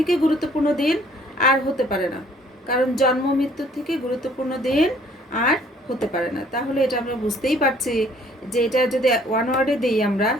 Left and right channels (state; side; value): normal; both; correlation 0.59